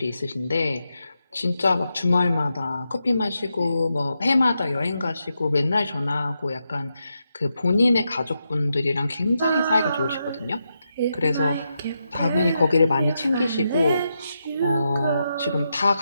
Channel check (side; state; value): both; inverted; correlation -0.85